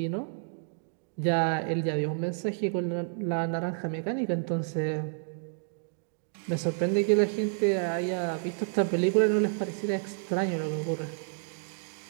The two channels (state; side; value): silent; left; digital silence